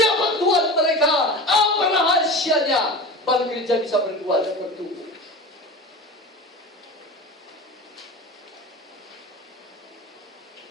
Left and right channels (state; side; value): normal; both; correlation 0.31